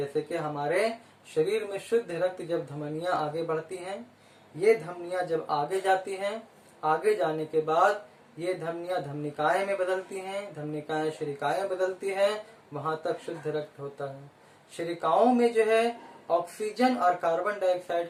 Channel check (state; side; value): identical; both; correlation 1.00